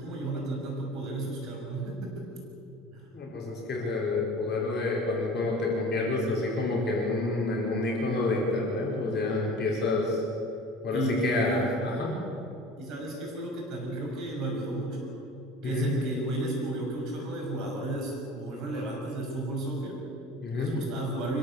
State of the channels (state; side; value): normal; both; correlation 0.41